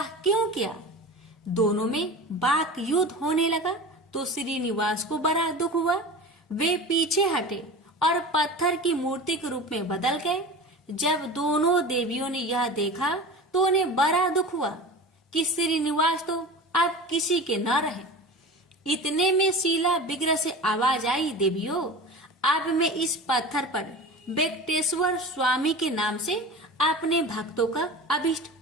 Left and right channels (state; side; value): normal; both; correlation 0.33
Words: क्यों किया? दोनों में वाक युद्ध होने लगा तो श्रीनिवास को बड़ा दुख हुआ। वे पीछे हटे और पत्थर की मूर्ति के रूप में बदल गए। जब दोनों देवियों ने यह देखा तो उन्हें बड़ा दुख हुआ कि श्रीनिवास तो अब किसी के न रहे। इतने में शीला विग्रह से आवाज आई, देवियों, अब मैं इस पत्थर पर वेंकटेश्वर स्वामी के नाम से अपने भक्तों का अभिष्ट